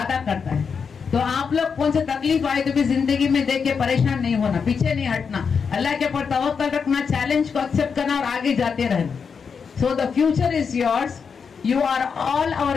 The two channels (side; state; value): right; quieter; 6.0 dB